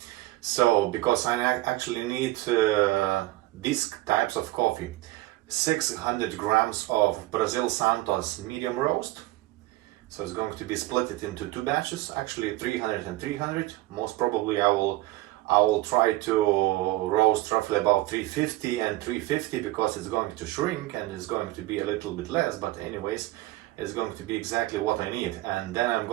So, because I actually need these types of coffee. 600 grams of Brazil Santos medium roast. So it's going to be split it into 2 batches, actually 300 and 300. Most probably I will try to roast roughly about 350 and 350 because it's going to shrink and it's going to be a little bit less, but anyways, it's going to be exactly what I need. And then I'm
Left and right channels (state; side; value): quieter; left; 18.0 dB